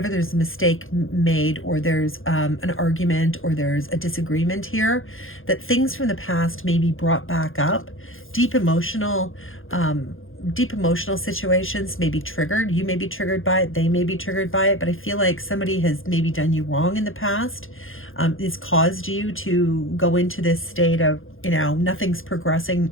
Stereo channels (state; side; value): late; right; 0.59 ms